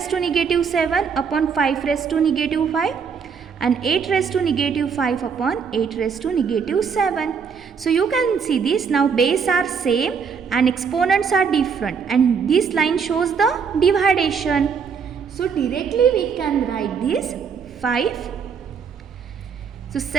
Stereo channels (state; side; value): quieter; left; 6.2 dB